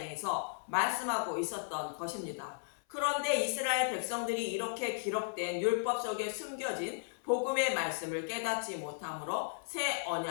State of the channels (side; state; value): right; silent; 54 dB below the other